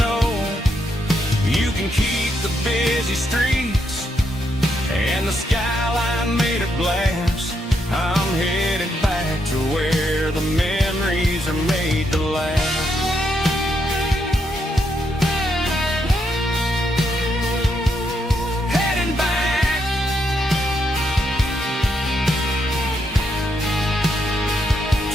know. You can keep the busy streets and the skyline made of glass. I'm headed back to where the memories are made to last. Heading back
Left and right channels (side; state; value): both; normal; correlation 0.79